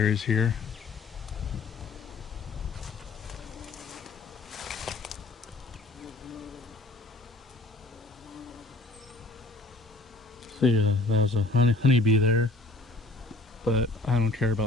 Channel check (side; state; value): right; quieter; 3.2 dB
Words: here. See, that was a honeybee there, but I don't care